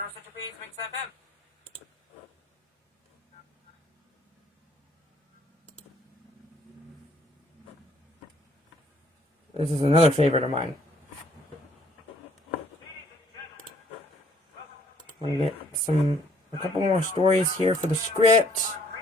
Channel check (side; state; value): both; normal; correlation 0.62